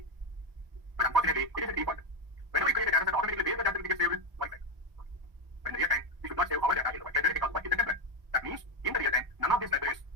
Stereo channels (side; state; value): left; late; 1.1 ms